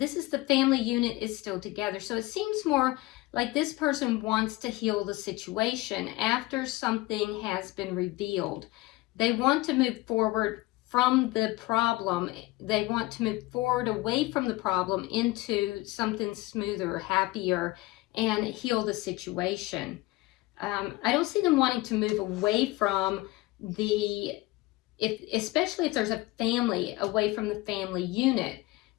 the family unit is still together. So it seems more like this person wants to heal the situation after something has been revealed. They want to move forward from the problem. They want to move forward away from the problem into something smoother, happier, and heal the situation. I don't see them wanting to move away from especially if there's a family, away from the family unit.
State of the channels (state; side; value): quieter; right; 20.2 dB